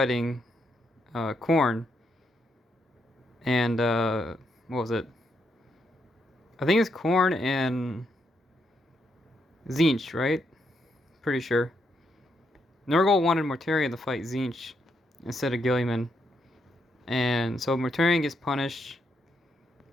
Khorne, and what was it? I think it's Khorne and Tzeentch, right? Pretty sure. Nurgle wanted Mortarion to fight Tzeentch instead of Guilliman, and so Mortarion gets punished.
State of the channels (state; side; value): normal; both; correlation 0.79